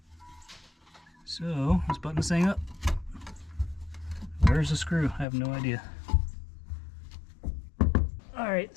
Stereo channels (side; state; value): right; drops out; at 5.2 s